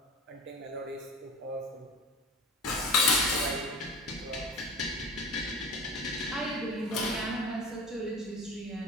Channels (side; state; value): both; normal; correlation 0.35